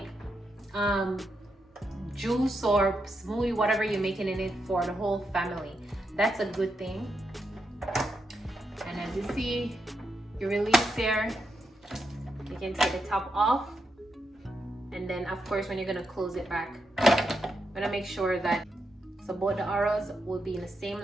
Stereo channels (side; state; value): both; normal; correlation 0.84